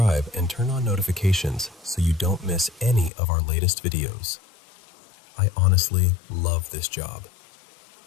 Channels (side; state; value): right; drops out; at 3.1 s